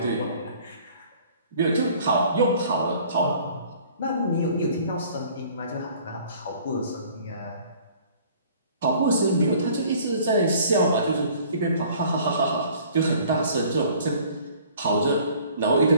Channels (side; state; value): both; inverted; correlation -0.53